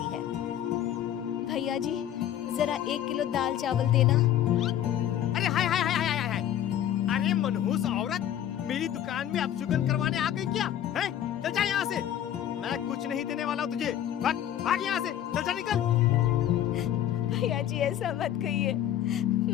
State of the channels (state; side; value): quieter; right; 11.1 dB